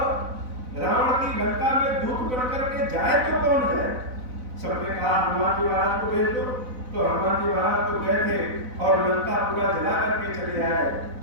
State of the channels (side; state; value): left; late; 4.0 ms